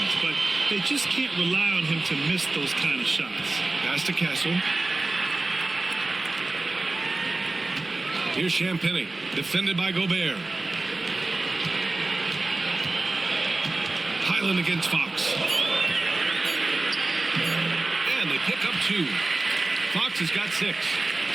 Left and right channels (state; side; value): quieter; left; 3.1 dB